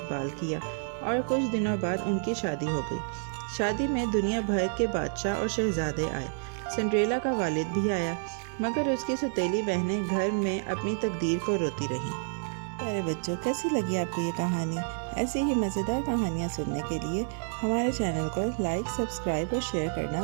کیا اور کچھ دنوں بعد ان کی شادی ہو گئی۔ شادی میں دنیا بھر کے بادشاہ اور شہزادے آئے۔ سنڈریلا کا والد بھی آیا، مگر اس کی سوتیلی بہنیں گھر میں اپنی تقدیر کو روتی رہیں۔ پیارے بچوں، کیسی لگی آپ کو یہ کہانی؟ ایسی ہی مزیدار کہانیاں سننے کے لیے ہمارے چینل کو لائک، سبسکرائب اور شیئر کرنا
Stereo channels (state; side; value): silent; left; digital silence